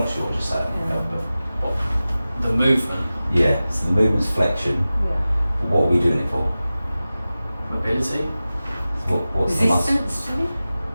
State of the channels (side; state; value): both; inverted; correlation -0.96